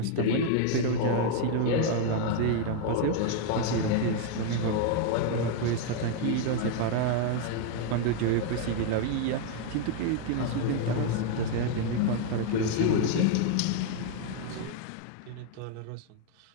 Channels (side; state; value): both; different; correlation 0.01